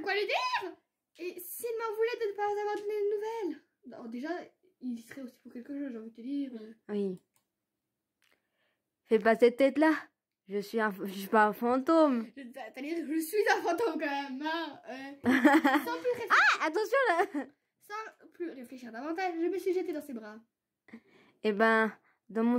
lui dire. Et s'il m'en voulait de ne pas avoir donné de nouvelles. Alors déjà, il y serait aussi pour quelque chose, j'ai envie de te dire. Oui. Fais pas cette tête-là. Je suis pas un fantôme. C'est-à-dire que je suis un fantôme quand même. Hein. Sans plus réfléchir. Ah, attention là. Sans plus réfléchir davantage, je me suis jetée dans ses bras. Eh ben, dans mon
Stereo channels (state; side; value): identical; both; correlation 1.00